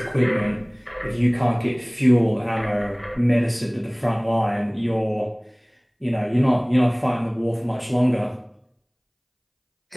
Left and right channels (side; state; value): both; identical; correlation 1.00